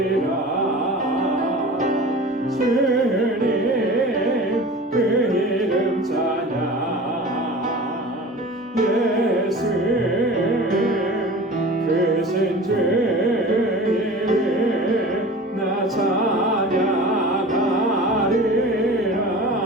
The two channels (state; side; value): normal; both; correlation 0.38